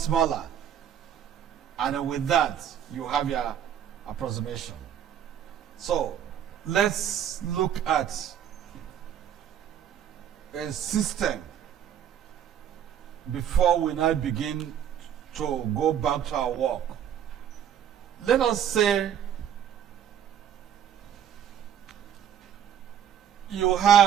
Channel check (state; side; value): quieter; left; 9.5 dB